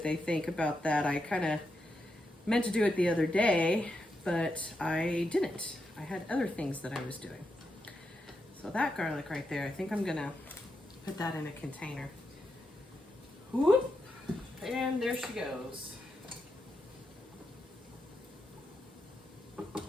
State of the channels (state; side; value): normal; both; correlation 0.85